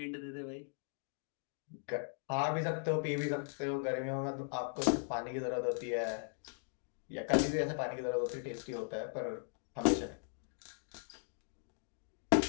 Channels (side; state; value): right; silent; digital silence